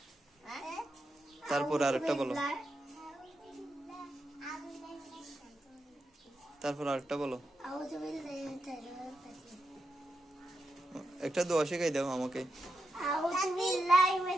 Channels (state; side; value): normal; both; correlation 0.86